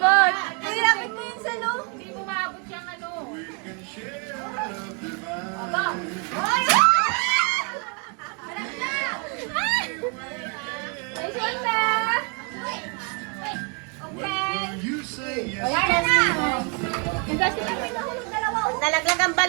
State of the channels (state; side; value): quieter; left; 34.5 dB